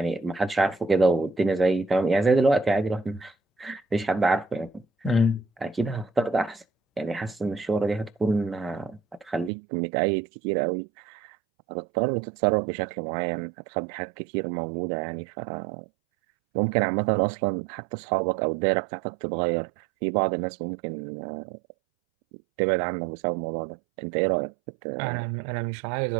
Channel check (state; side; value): drops out; left; at 9.5 s